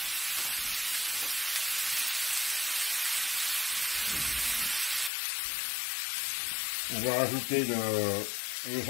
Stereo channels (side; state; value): right; drops out; at 5.1 s